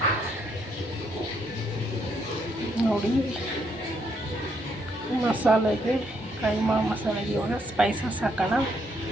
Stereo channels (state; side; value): normal; both; correlation 0.73